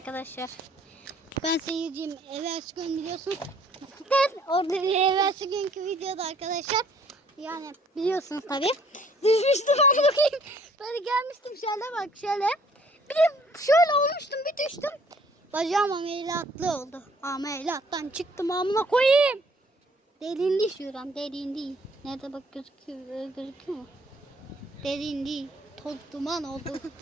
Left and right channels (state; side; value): normal; both; correlation 0.59